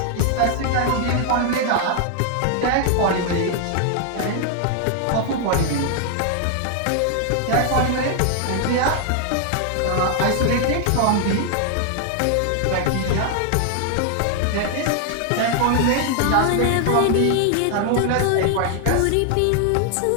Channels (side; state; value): both; different; correlation 0.00